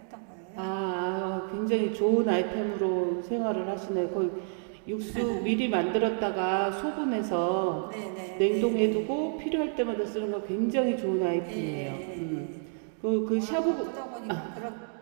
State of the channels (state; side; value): silent; left; digital silence